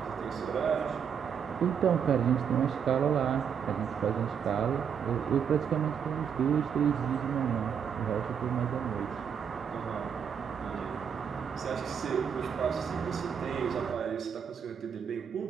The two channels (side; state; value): left; quieter; 7.5 dB